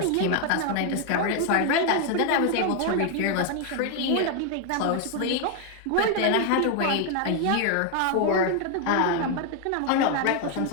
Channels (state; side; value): different; both; correlation 0.01